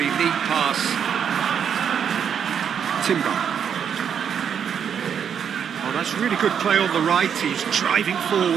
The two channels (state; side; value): quieter; left; 7.9 dB